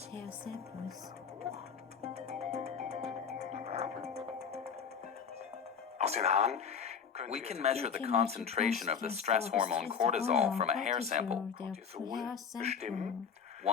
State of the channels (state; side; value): quieter; right; 6.8 dB